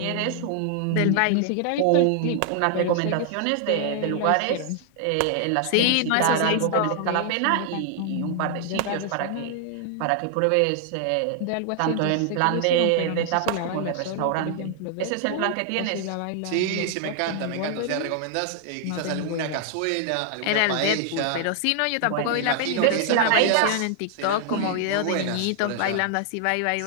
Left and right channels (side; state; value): both; different; correlation 0.00